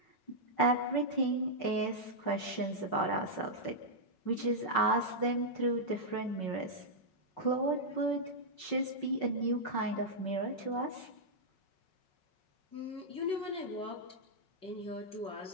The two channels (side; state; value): right; late; 5.4 ms